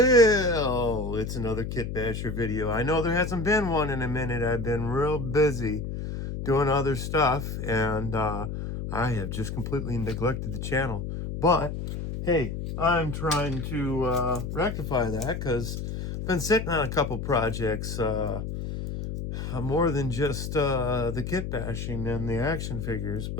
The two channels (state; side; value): noise; left; hum, 5 dB below the sound